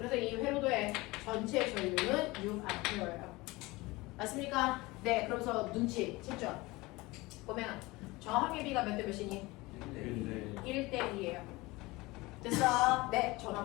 이 회로도의 전체 전류는 6A예요. 맞습니까? 네. 그러면서 눈치 챘죠? 꼬맹아. 저항의 비가 몇 대 몇이니? 1대 2예요. 됐어? 네.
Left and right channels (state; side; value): quieter; right; 21.8 dB